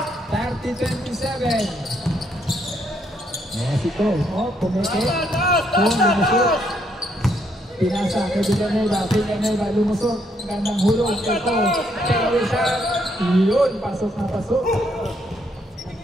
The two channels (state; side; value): normal; both; correlation 0.73